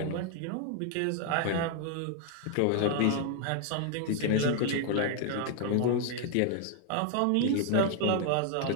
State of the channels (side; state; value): both; different; correlation 0.00